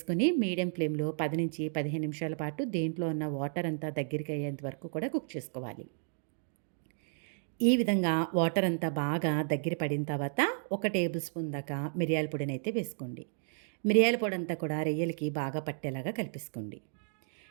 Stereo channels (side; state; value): left; silent; digital silence